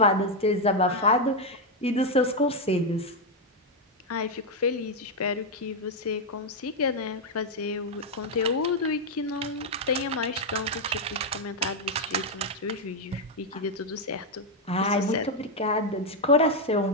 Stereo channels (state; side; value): normal; both; correlation 0.02